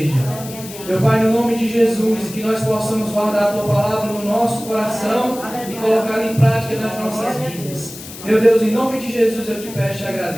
Meu Pai, no nome de Jesus, que nós possamos guardar a tua palavra no nosso coração e colocá-la em prática nas nossas vidas. Meu Deus, em nome de Jesus eu te peço e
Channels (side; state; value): left; noise; hiss, 14 dB below the sound